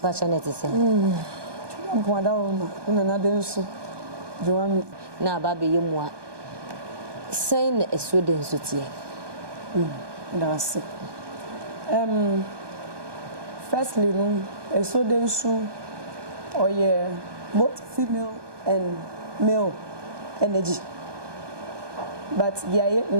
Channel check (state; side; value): late; left; 1.2 ms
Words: ba chanete se mpoada wo ma na Densu joami na ba be yemu a sei na Asuo Densu tie that's it. Firstly, Asuo Densu or both female and male energy. But the